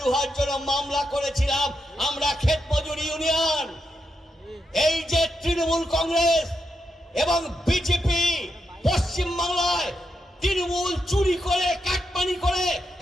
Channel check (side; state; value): both; normal; correlation 0.84